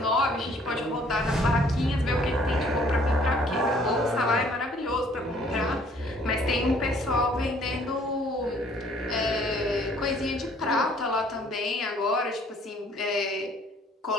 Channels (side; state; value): both; normal; correlation 0.59